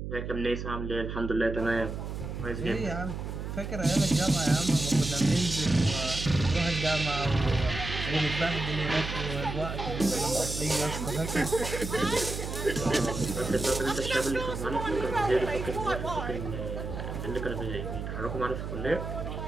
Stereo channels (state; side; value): noise; right; hum, 6 dB below the sound